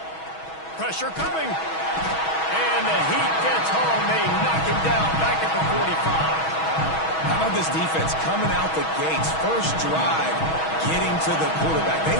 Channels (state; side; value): late; right; 6.2 ms